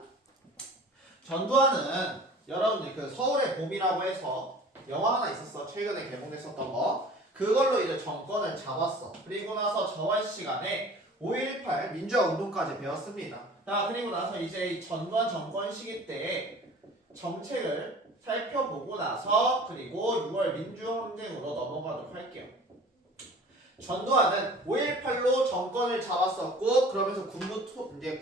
전두환은 여러분들 그 서울의 봄이라고 해서 영화 하나 있었어. 최근에 개봉됐었던 거. 그걸로 이제 정권을 잡았어. 그리고 나서 저번 시간에 5.18 민주화 운동까지 배웠습니다. 자, 그리고 나서 이제 이 전두환 정권 시기 때 정책을 살펴보고 나서 그리고 6월 민주항쟁으로 넘어가도록 할게요. 전두환은 5.18로 정권을 잡았었고 그러면서 이제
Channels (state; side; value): normal; both; correlation 0.45